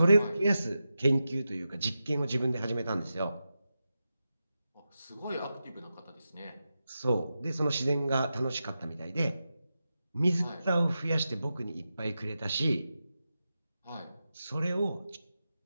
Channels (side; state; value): both; inverted; correlation -0.91